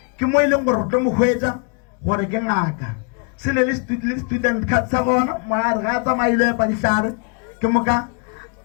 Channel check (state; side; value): quieter; right; 35.6 dB